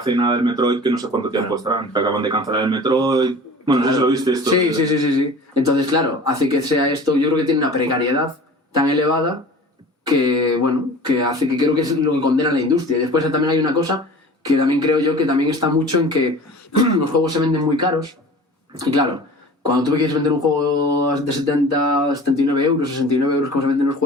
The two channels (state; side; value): normal; both; correlation 0.41